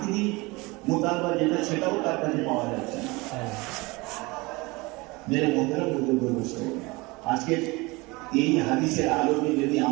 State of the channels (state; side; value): quieter; left; 24.2 dB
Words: মোতালবা যেটা সেটাও তার কাছে পাওয়া যাচ্ছে না। মেরে মধ্যে বুঝতে বলছে আজকে এই হাদিসের আলোকে যদি